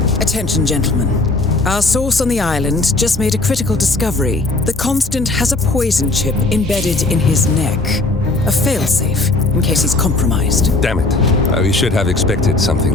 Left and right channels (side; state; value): right; quieter; 3.1 dB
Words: Attention, gentlemen. Our source on the island just made a critical discovery. The Constant has a poison chip embedded in his neck. A failsafe, in case he's compromised. Damn it. We should have expected something